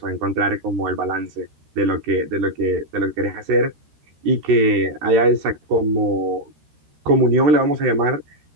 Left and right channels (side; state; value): left; late; 13 ms